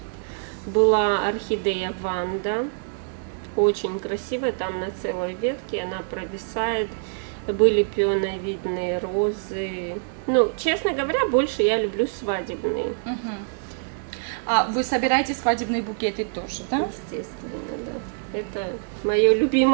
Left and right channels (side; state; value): left; silent; digital silence